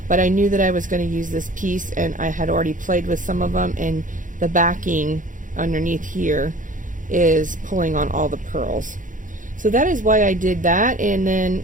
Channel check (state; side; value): late; left; 0.38 ms